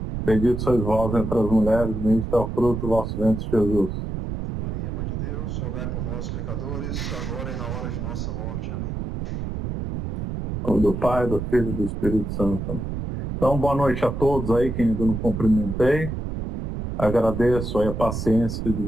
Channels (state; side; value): noise; right; rumble, 4 dB below the sound